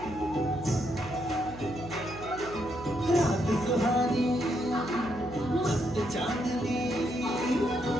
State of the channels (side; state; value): right; noise; hum, 15 dB below the sound